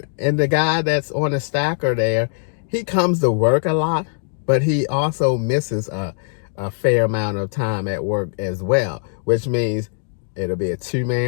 the guy that's on the stacker there, he comes to work a lot, but he also misses a fair amount of time at work as well, which means it'll be a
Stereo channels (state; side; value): silent; right; 65 dB below the other